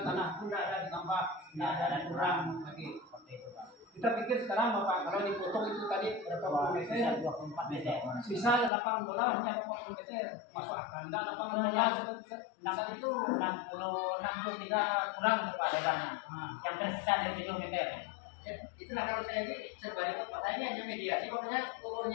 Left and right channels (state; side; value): drops out; right; at 8.7 s